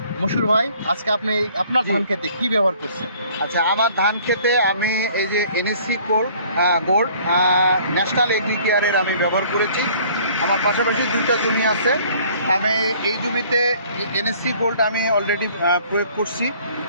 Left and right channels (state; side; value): inverted; both; correlation -0.55